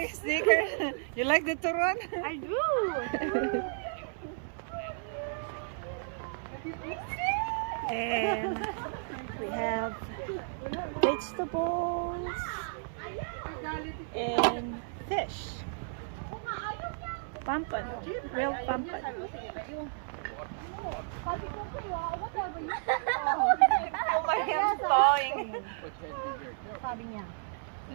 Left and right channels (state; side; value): silent; left; 56 dB below the other